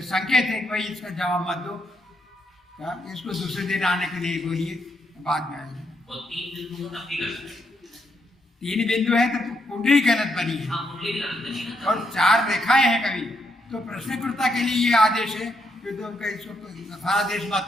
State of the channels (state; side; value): normal; both; correlation 0.78